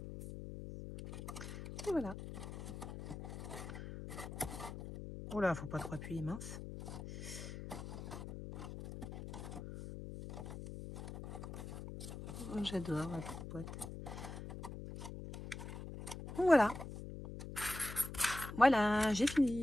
Et voilà. Oh là, faut pas trop appuyer, mince. Oh, j'adore la petite boîte. Voilà. Voilà, j'ai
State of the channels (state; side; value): noise; left; hum, 9 dB below the sound